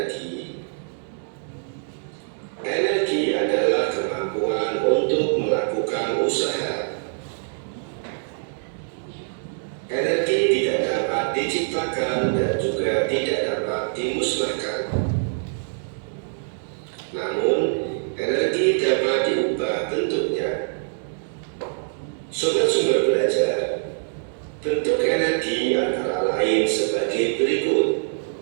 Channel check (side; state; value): left; silent; digital silence